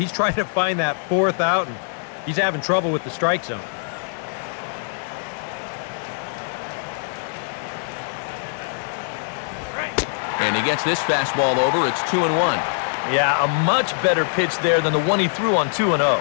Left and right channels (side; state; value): right; silent; 61 dB below the other